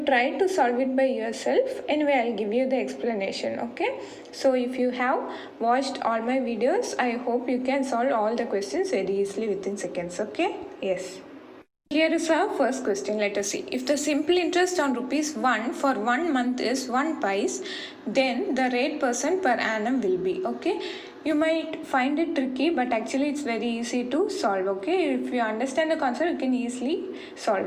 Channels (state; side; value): identical; both; correlation 1.00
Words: try to solve it by yourself. Anyway, I'll give you the explanation. Okay, so if you have watched all my videos, I hope you can solve all the questions very easily within seconds. Okay, yes. Here is our first question. Let us see. If the simple interest on ₹1 for 1 month is 1 pice, then the rate % per annum will be. Okay, you might find it tricky, but actually it's very easy to solve. Okay, if you understand the concept, you can easily